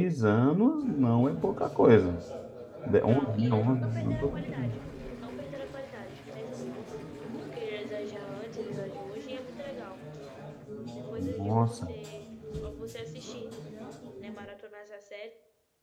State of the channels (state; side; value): identical; both; correlation 1.00